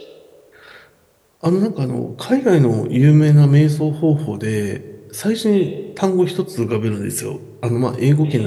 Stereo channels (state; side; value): identical; both; correlation 1.00